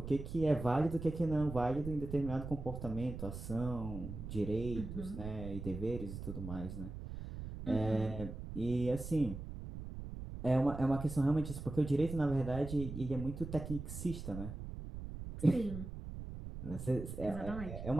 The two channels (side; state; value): right; noise; rumble, 8 dB below the sound